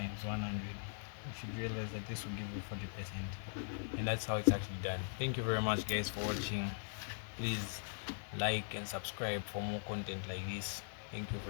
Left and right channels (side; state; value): right; silent; digital silence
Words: 100. You should realize that this will give you 40%, and that's how it's actually done. Thank you very much, guys, for watching. Please like and subscribe for more content like this. Thank you